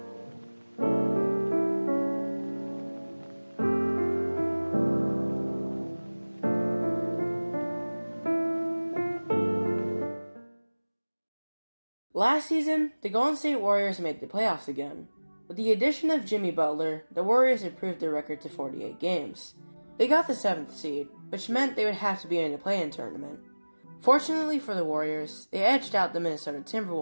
Last season, the Golden State Warriors made the playoffs again. With the addition of Jimmy Butler, the Warriors improved their record to 48 games. They got the 7th seed, which meant they would have to be in the play-in tournament. Fortunately for the Warriors, they edged out the Minnesota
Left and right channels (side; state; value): both; inverted; correlation -1.00